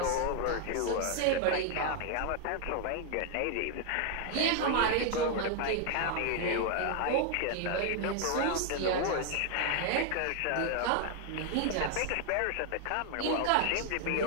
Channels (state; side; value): different; both; correlation 0.00